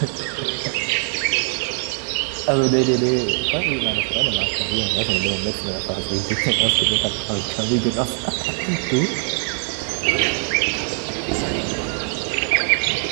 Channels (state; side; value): silent; left; 59 dB below the other